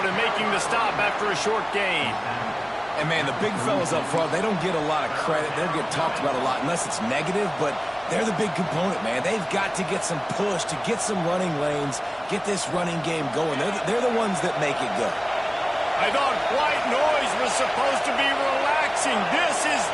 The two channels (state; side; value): identical; both; correlation 1.00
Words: and making the stop after a short gain. And, man, the big fellas up front, they don't get a lot of credit. They don't get talked about a lot unless it's negative, but they're the big component, man. They've got to get some push, to get some running lanes, get this running game going. They're the ones that make it go. I thought white noise was supposed to be relaxing. This is